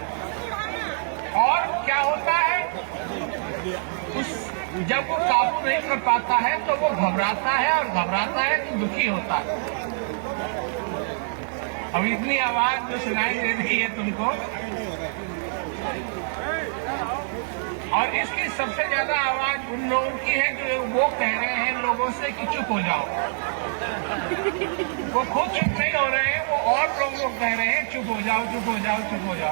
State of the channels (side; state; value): left; silent; 62 dB below the other